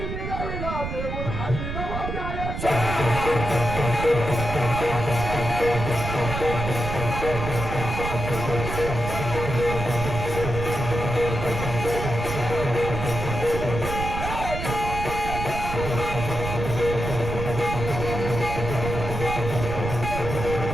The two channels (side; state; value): right; noise; rumble, 5 dB below the sound